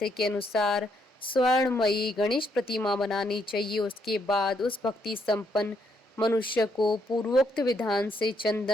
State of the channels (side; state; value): both; normal; correlation 0.74